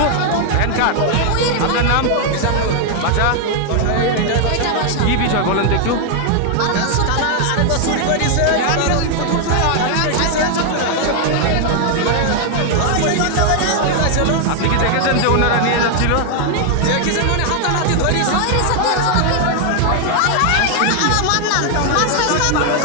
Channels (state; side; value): different; both; correlation 0.00